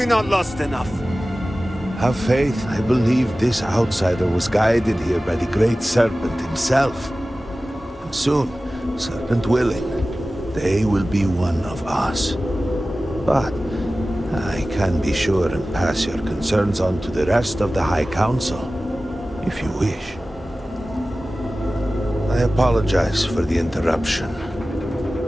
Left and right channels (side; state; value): both; normal; correlation 0.96